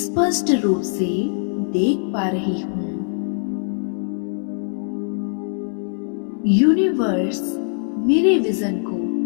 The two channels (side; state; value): right; silent; 64 dB below the other